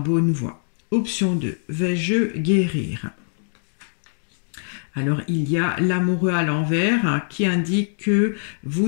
voie. Option 2, vais-je guérir? Alors, il y a l'amoureux à l'envers, hein, qui indique que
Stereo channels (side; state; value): right; silent; digital silence